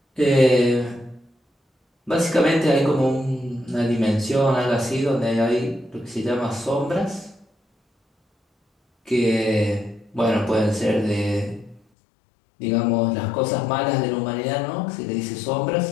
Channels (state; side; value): drops out; right; at 11.8 s